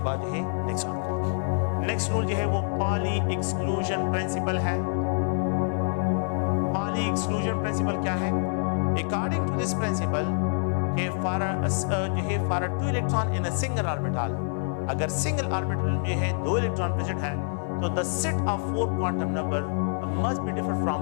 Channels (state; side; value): silent; right; 60 dB below the other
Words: बाद जो है नेक्स्ट ऑर्बिटल की। नेक्स्ट रूल जो है वो पॉली एक्सक्लूजन प्रिंसिपल है। पॉली एक्सक्लूजन प्रिंसिपल क्या है? अकॉर्डिंग टू दिस प्रिंसिपल कि for a 2 electron in a single orbital, अगर सिंगल ऑर्बिटल में है 2 इलेक्ट्रॉन प्रेजेंट है तो the set of 4 quantum number must be different from